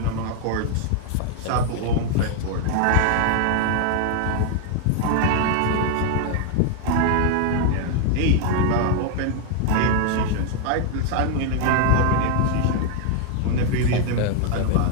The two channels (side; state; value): both; different; correlation 0.00